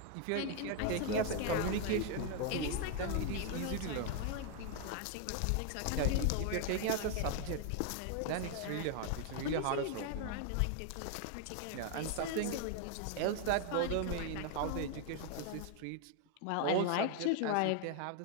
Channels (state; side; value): different; both; correlation 0.00